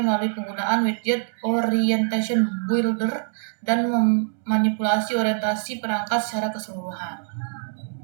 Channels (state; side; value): silent; left; digital silence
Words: melalui penggunaan widget orientation builder dan memanipulasi orientasi perangkat secara keseluruhan.